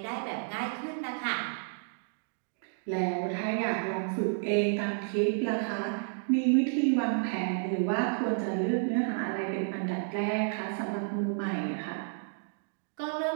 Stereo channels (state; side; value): silent; left; digital silence